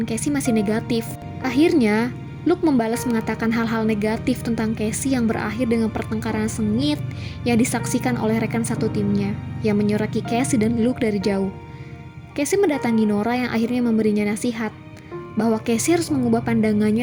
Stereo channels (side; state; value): both; identical; correlation 1.00